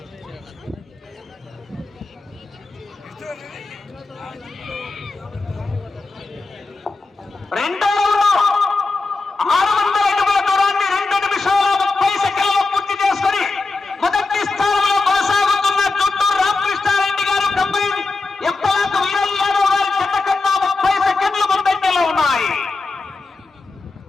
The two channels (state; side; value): quieter; right; 3.7 dB